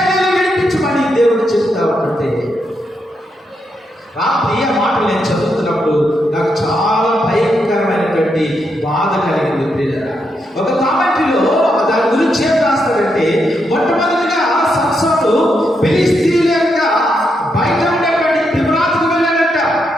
విడిపించమని దేవుడు చెప్తా ఉంటే రాత్రి ఆ మాటలు నేను చదువుతున్నప్పుడు నాకు చాలా భయంకరమైనటువంటి బాధ కలిగింది పిల్లల. ఒక కామెంటరీలో దాని గురించి ఏం రాస్తాడంటే మొట్టమొదటిగా సంసోను ఫిలిష్తీయుల యొక్క బయట ఉండేటువంటి తిమ్నాతుకు వెళ్ళాడట.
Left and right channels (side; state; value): both; normal; correlation 0.81